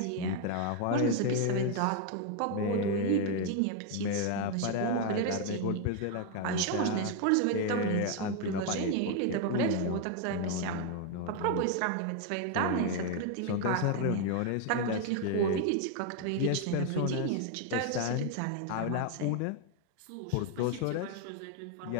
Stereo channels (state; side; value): different; both; correlation 0.01